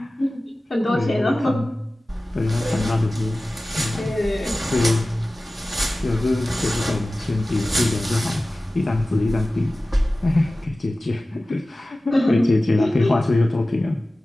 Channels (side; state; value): both; normal; correlation 0.96